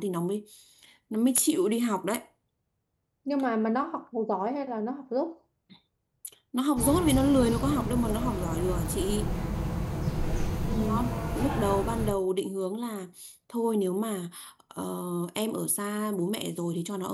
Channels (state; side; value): identical; both; correlation 1.00